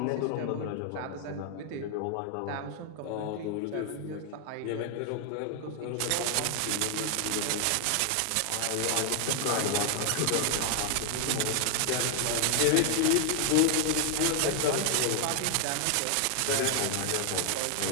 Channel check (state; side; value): different; both; correlation 0.00